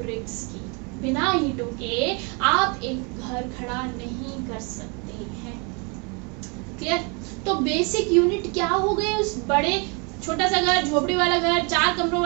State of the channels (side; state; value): left; quieter; 32.4 dB